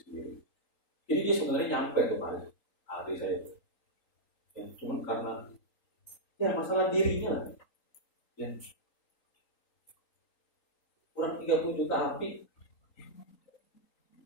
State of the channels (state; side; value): late; right; 3.8 ms